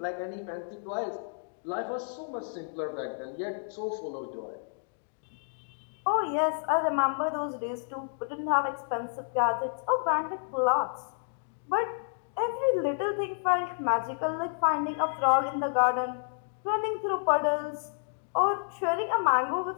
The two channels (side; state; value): right; silent; digital silence